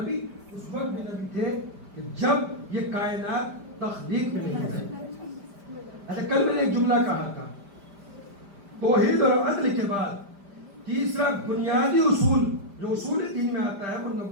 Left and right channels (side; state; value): left; late; 5.0 ms